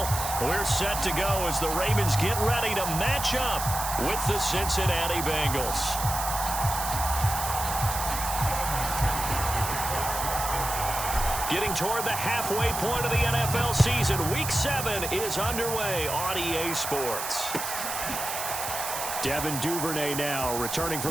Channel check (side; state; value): right; noise; hiss, 5 dB below the sound